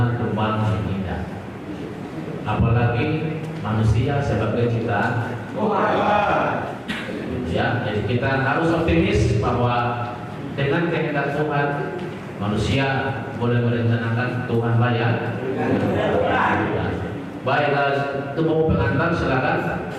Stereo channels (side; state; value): both; identical; correlation 1.00